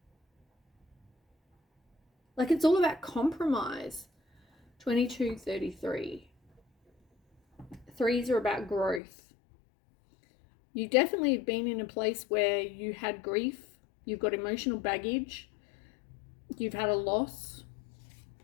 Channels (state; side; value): drops out; right; at 9.0 s